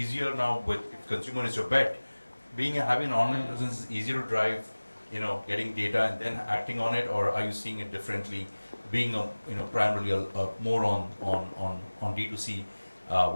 now with, if consumer is your bet, having an online presence is easier to drive, getting data and then acting on it, or are you seeing it differently, being primarily more on D2C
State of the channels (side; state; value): both; inverted; correlation -1.00